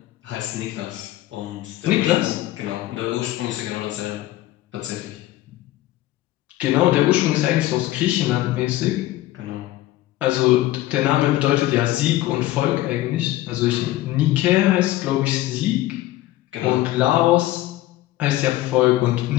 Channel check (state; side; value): quieter; right; 15.7 dB